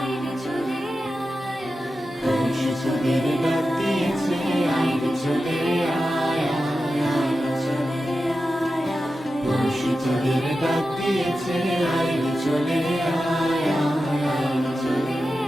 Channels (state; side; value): normal; both; correlation 0.92